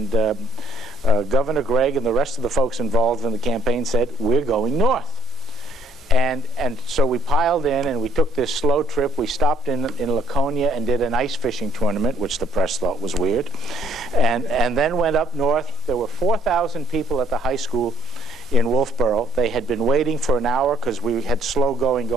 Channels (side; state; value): both; normal; correlation 0.63